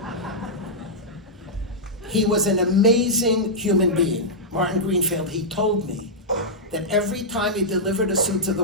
He was an amazing human being. Martin Greenfield, he told me that every time he delivered a suit to the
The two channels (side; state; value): both; normal; correlation -0.10